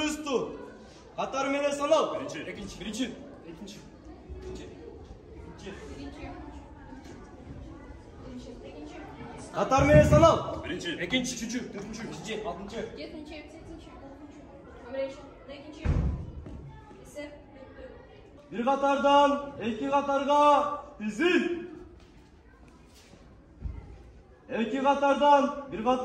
tut. Katar mene sanal. Birinci. Katar menen sanal. Birinci, Ekinchi, üçüncü, dördüncü, beşinci, altıncı. 7-chi, 8-chi, 9-chi, 11-chi, 12-chi. Esep, Bir katardan iki katarga dizil. İki katardan bir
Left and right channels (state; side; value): identical; both; correlation 1.00